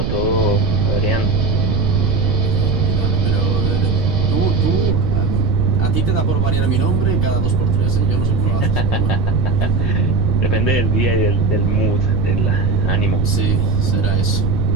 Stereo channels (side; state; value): right; noise; rumble, 1 dB below the sound